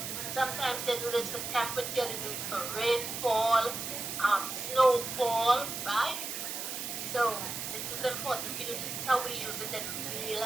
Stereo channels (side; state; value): right; noise; hiss, 5 dB below the sound